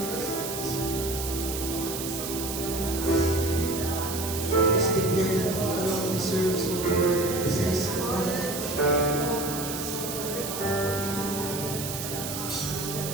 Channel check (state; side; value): noise; right; hiss, 6 dB below the sound